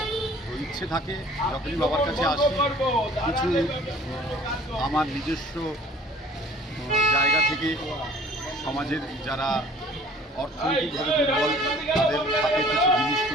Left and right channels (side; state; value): both; normal; correlation 0.51